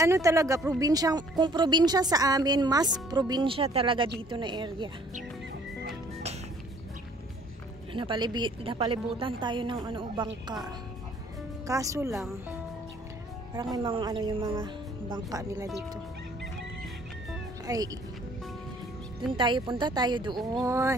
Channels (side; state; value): both; normal; correlation 0.58